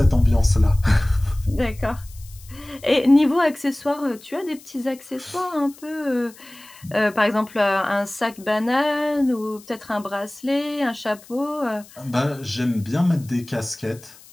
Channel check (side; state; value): left; noise; hiss, 22 dB below the sound